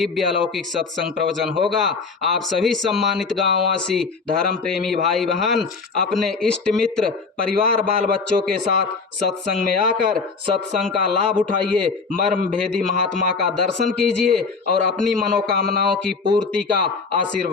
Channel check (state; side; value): quieter; right; 4.6 dB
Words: अलौकिक सत्संग प्रवचन होगा। आप सभी सम्मानित गांववासी धर्म प्रेमी भाई बहन अपने इष्ट मित्र परिवार बाल बच्चों के साथ सत्संग में आकर सत्संग का लाभ उठाइए, मर्म भेदी महात्मा का दर्शन कीजिए और अपनी मनोकामनाओं की पूर्ति का